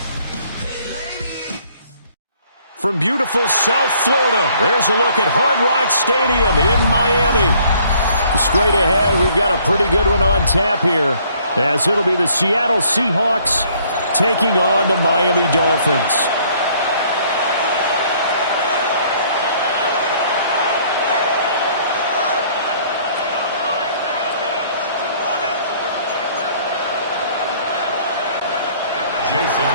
Hey lady. From beautiful South Florida, there's a look at Hard Rock Stadium in Miami. Straight ahead, we've got a pretty good one on tap here, as it'll be the Seattle Seahawks taking on the Miami Dolphins. Jason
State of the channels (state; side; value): inverted; both; correlation -0.61